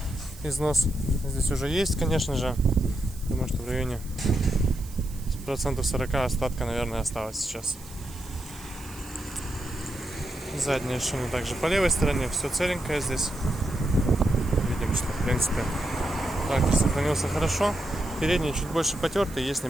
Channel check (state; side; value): noise; right; hiss, 19 dB below the sound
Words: износ здесь уже есть, конечно же. Думаю, что в районе процентов 40 остатка, наверное, осталось сейчас. Задние шины также по левой стороне, все целенькое здесь. Видим, что в принципе трактор сохранился хорошо. Передние чуть больше потертые, есть